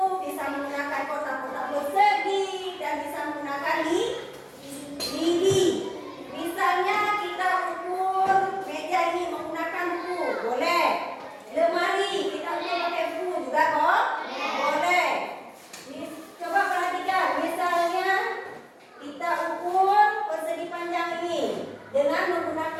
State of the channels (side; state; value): both; identical; correlation 1.00